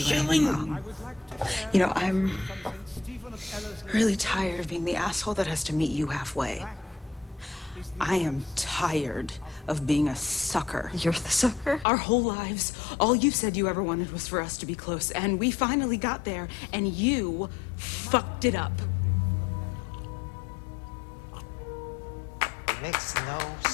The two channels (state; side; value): drops out; right; at 11.9 s